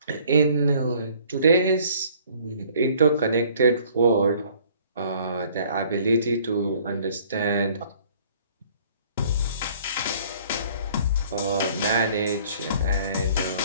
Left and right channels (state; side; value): inverted; both; correlation -0.56